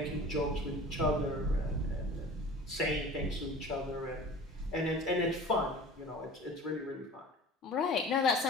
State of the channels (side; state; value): both; normal; correlation 0.40